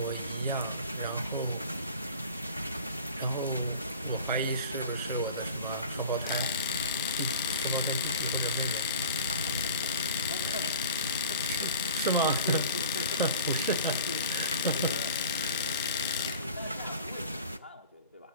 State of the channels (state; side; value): inverted; both; correlation -0.40